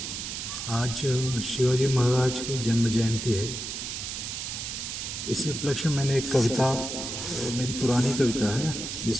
आज शिवाजी महाराज की जन्म जयंती है। इसी उपलक्ष्य में मैंने एक कविता, मेरी पुरानी कविता है,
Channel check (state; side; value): noise; right; hiss, 5 dB below the sound